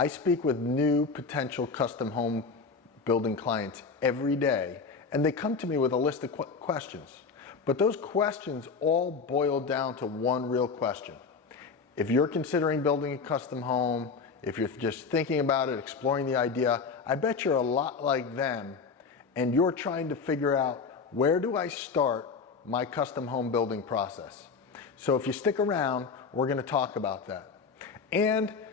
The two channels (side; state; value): right; quieter; 5.1 dB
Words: speak with new potential custom home building clients every day, and they come to me with a list of questions. But those questions all boil down to one real question. If you're considering building a custom home, if you're just thinking about it, exploring the idea, I bet you're a lot like them, and you're trying to figure out, where do I start my custom home building process? So if you stick around, we're going to talk about that. And